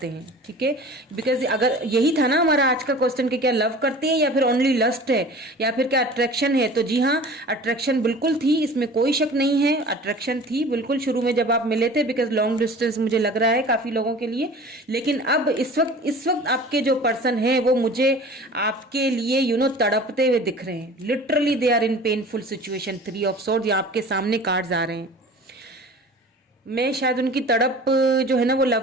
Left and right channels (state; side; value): normal; both; correlation 0.42